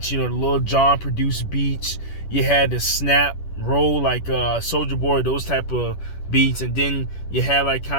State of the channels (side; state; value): right; late; 10 ms